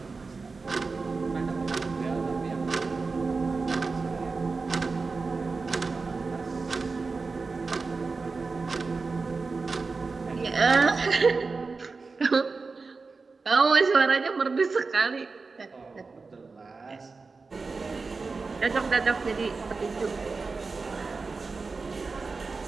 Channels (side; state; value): left; quieter; 4.2 dB